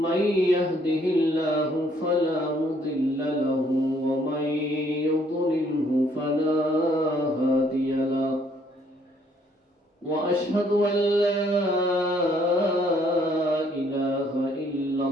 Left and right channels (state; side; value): normal; both; correlation 0.65